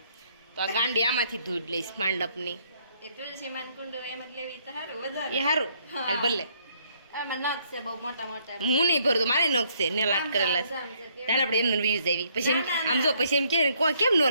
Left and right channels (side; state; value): both; inverted; correlation -0.68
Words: તો આ ગાંડી આમાંથી ધૂળ લઈશ માંડપની. એ તુલસીમાન કુંડ એમ જ લેવી તો સારું વધારે. એ સારું હાલ ભલે. એમાં નખ છે બહુ મોટા મોટા. હું નહીં ભરતો, મારે નખ છે ને લાટ કરેલા છે. ત્યારે આપણે એમને વ્યૂઝ આવી પછી એમ આમ જો પછી એમ કે કોઈ કેમ ન